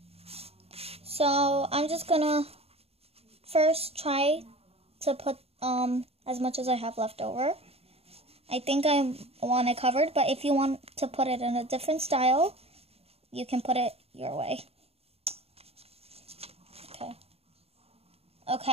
So, I'm just gonna first try to put as much as I have left over. I think I want it covered, but if you want to put it in a different style, you can put it your way.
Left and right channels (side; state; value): left; late; 0.29 ms